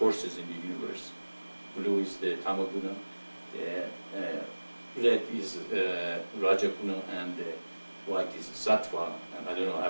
in the universe. Blue is the Tamaguna, red is Rajaguna, and white is Sattva. And I don't know,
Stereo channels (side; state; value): both; inverted; correlation -1.00